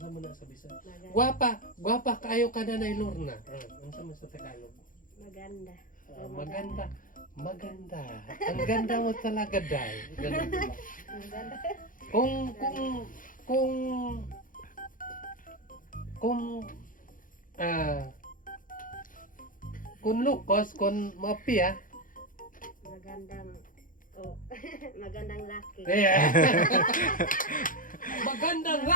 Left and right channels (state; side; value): late; right; 0.39 ms